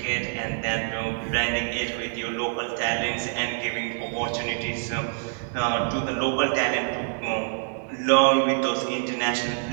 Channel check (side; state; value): left; silent; 61 dB below the other